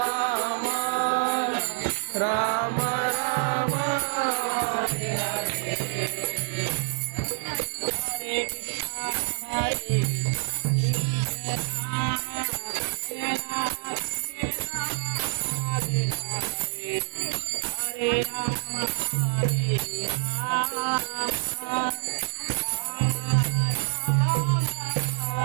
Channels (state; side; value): silent; left; digital silence